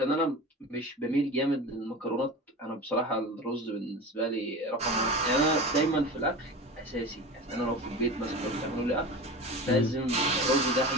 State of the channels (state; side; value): normal; both; correlation 0.31